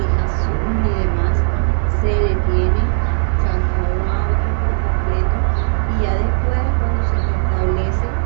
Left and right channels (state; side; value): silent; left; digital silence